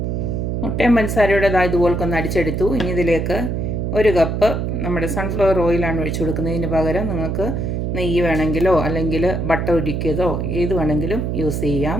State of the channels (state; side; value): noise; right; hum, 1 dB below the sound